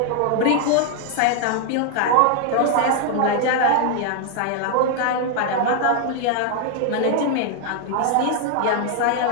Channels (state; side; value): different; both; correlation 0.00